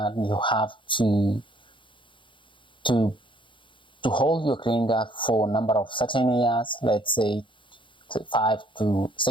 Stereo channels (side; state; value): right; late; 0.24 ms